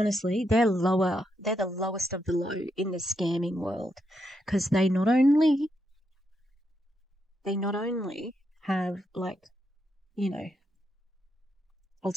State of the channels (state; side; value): normal; both; correlation 0.81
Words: they're lower. They're the lowest of the low in the scamming world, because they not only have, like, you know,